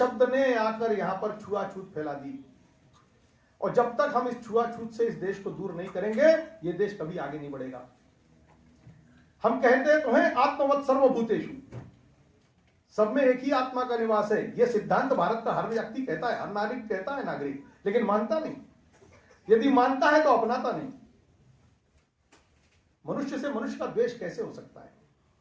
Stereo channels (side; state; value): both; identical; correlation 1.00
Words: ने आकर यहां पर छुआछूत फैला दी, और जब तक हम इस छुआछूत से इस देश को दूर नहीं करेंगे ये देश कभी आगे नहीं बढ़ेगा। हम कहते तो हैं आत्मवत् सर्वभूतेषु, सब में एक ही आत्मा का निवास है। यह सिद्धांत भारत का हर व्यक्ति कहता है, हर नागरिक कहता है, नागरिक, लेकिन मानता नहीं। यदि मानता है तो अपनाता नहीं। मनुष्य से मनुष्य का द्वेष कैसे हो सकता है?